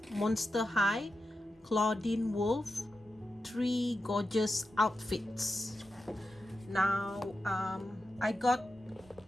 Monster High Clawdeen Wolf 3 gorgeous outfits. Now I got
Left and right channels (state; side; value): normal; both; correlation 0.90